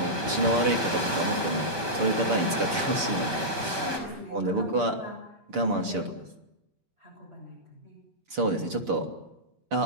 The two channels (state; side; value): late; left; 5.2 ms